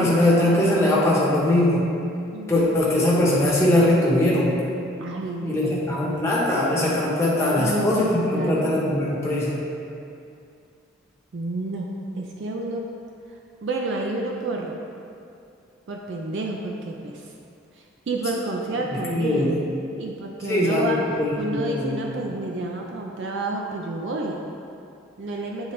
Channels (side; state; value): both; normal; correlation 0.55